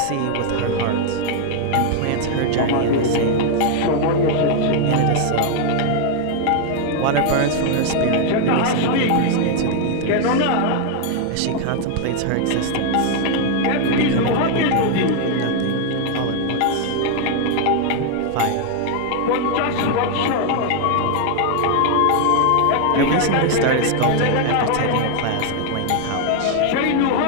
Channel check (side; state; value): both; different; correlation 0.00